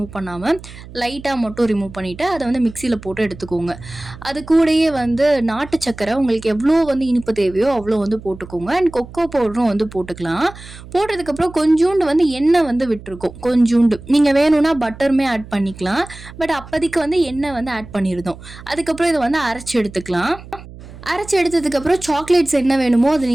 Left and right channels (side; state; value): right; noise; hum, 17 dB below the sound